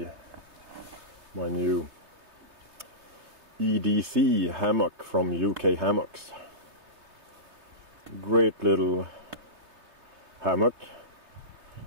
my new EDC Hammock from UK Hammocks. Great little hammock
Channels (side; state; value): left; late; 3.3 ms